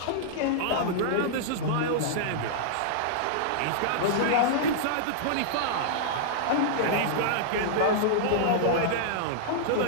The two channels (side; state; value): both; different; correlation -0.02